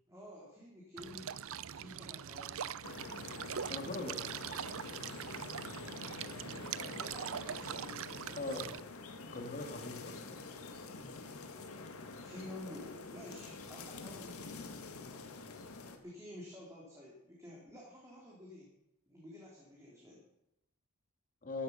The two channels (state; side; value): normal; both; correlation 0.06